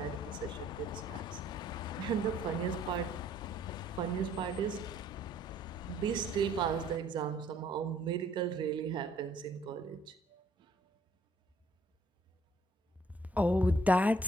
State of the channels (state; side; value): normal; both; correlation 0.62